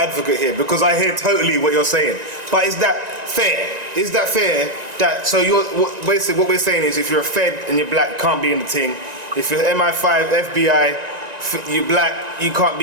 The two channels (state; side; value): late; left; 1.9 ms